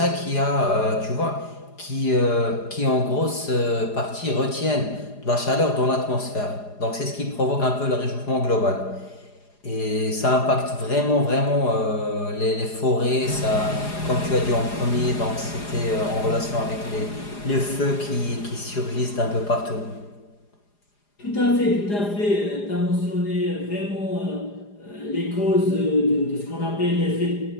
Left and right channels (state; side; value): late; right; 4.9 ms